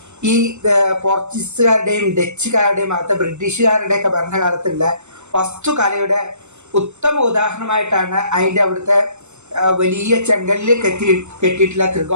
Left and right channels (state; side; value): late; left; 0.83 ms